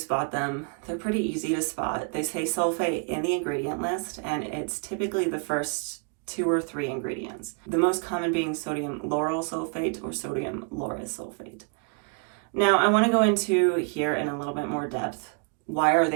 them? They're pretty easy to spot. They say sulfate in the ingredient list, and it's typically the first 2 or 3 ingredients. The most common being sodium lauryl sulfate or sodium lauryl sulfate. Now, I want to go into here in a little bit more depth. Why are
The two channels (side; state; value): left; quieter; 37.8 dB